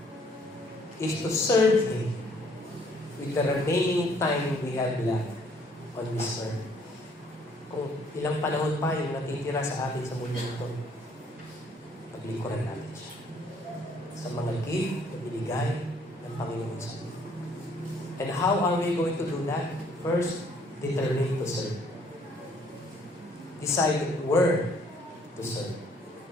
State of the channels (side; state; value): both; normal; correlation 0.63